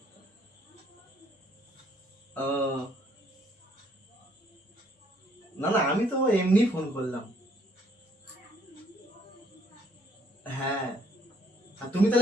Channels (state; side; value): normal; both; correlation 0.65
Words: না না, আমি তো এমনি ফোন করলাম। হ্যাঁ, আর তুমি